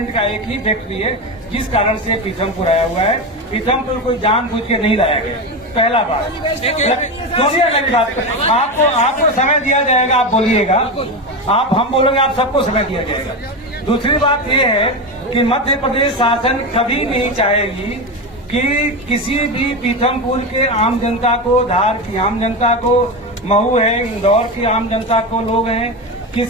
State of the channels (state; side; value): normal; both; correlation 0.17